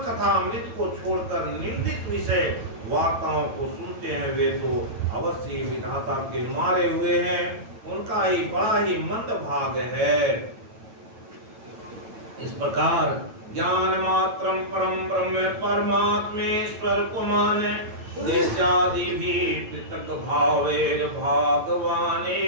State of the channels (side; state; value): left; late; 9.1 ms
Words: कथा अमृत को छोड़कर निंदित विषय वार्ताओं को सुनते हैं, वे तो अवश्य विधाता के मारे हुए हैं, उनका ही बड़ा ही मंद भाग है। इस प्रकार ज्ञान मात्रम परम ब्रह्म परमात्मेश्वर को माने, दृश्यादि भी पृथक भावेर भगवाने